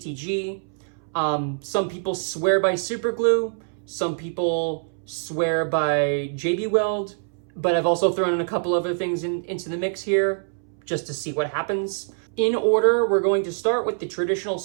Some people swear by superglue. Some people swear by JB Weld. But I've also thrown in a couple other things into the mix here just to see what happens. In order, we're going to start with the traditional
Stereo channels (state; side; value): silent; left; 62 dB below the other